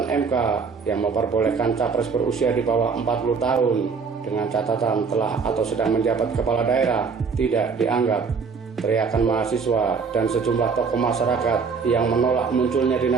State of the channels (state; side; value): quieter; left; 5.3 dB